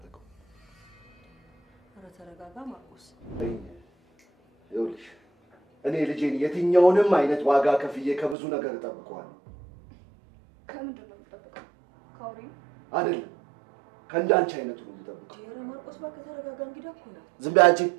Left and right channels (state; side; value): drops out; left; at 8.3 s